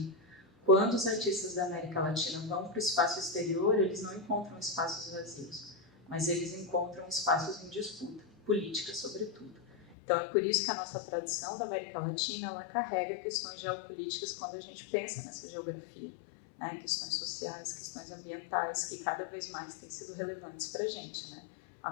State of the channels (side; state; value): right; drops out; at 10.0 s